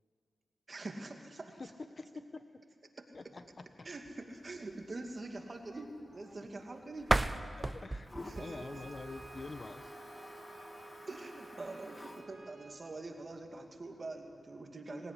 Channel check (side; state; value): both; normal; correlation 0.97